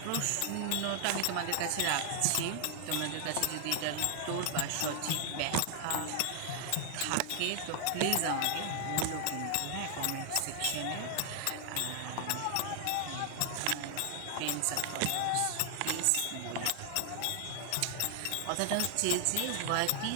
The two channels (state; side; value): different; both; correlation 0.00